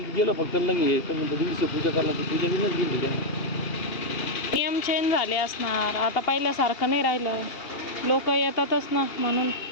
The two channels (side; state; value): right; late; 2.8 ms